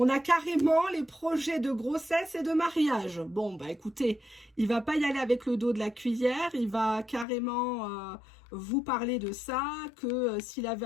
On a carrément les projets de grossesse et de mariage. Bon, bah écoutez, il va pas y aller avec le dos de la cuillère. Il va carrément vous parler de ça, que s'il avait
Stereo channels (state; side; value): drops out; right; at 7.2 s